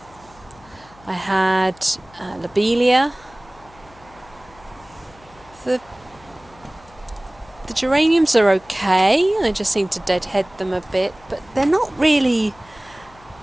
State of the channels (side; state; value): left; noise; hum, 25 dB below the sound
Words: I had Lobelia, the geraniums are okay, I just seem to deadhead them a bit, but they're not really